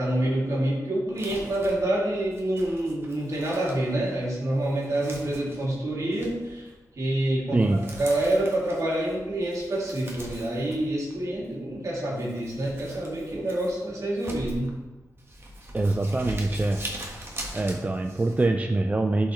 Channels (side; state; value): both; normal; correlation 0.88